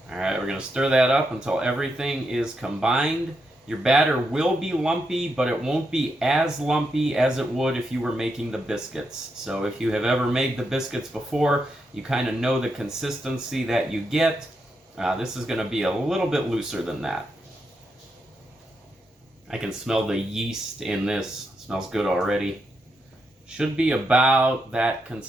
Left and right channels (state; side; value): normal; both; correlation 0.83